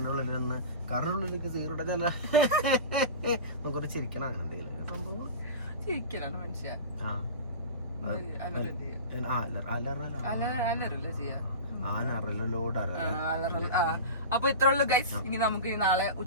ഉള്ളിൽ നിന്ന് കാറിനുള്ളിലേക്ക് സീറോടെ ചില നമുക്കൊരു ചിരിക്കണം. അങ്ങനെ എന്തെങ്കിലും സംഭവം ചിരിക്കലാണ് മനുഷ്യ. അലറല്ല ചെയ്യാ. അപ്പൊ ഇത്ര ഉള്ളു ഗൈസ്. ഇനി നമുക്ക് നാളെ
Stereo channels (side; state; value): both; inverted; correlation -0.30